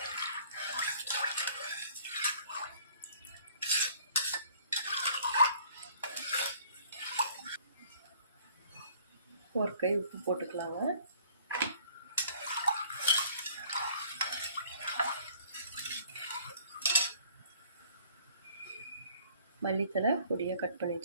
ஒரு கை உப்பு போட்டுக்கலாங்க. மல்லித்தலை பொடியாக கட் பண்ணி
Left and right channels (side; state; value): both; inverted; correlation -0.55